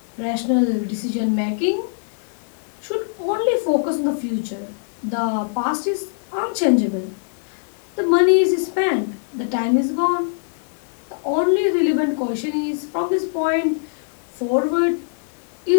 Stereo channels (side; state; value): right; silent; 64 dB below the other